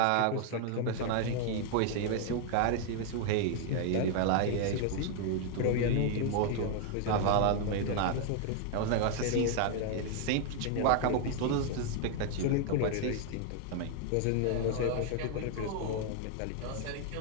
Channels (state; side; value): different; both; correlation 0.00